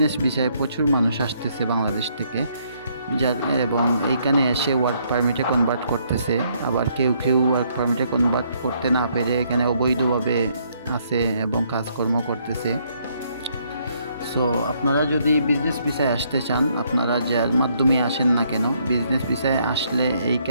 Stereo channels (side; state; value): both; inverted; correlation -0.70